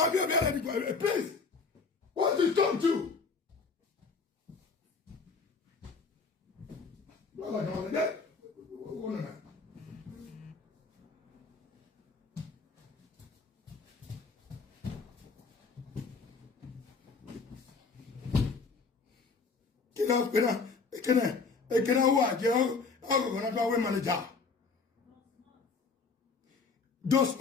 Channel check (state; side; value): quieter; right; 4.7 dB